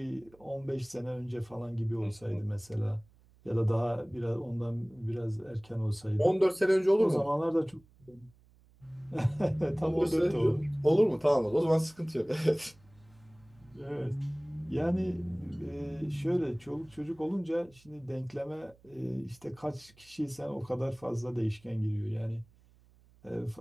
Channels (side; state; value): right; noise; hum, 29 dB below the sound